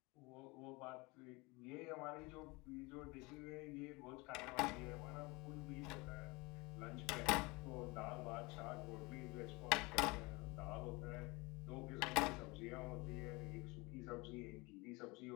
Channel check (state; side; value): quieter; right; 25.3 dB